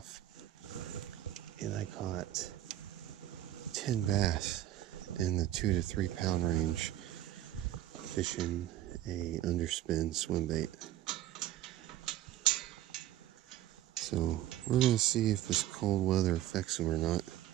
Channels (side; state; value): left; quieter; 13.2 dB